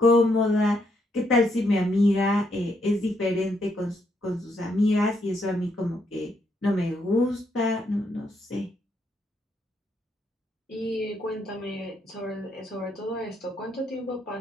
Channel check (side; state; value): both; normal; correlation 0.76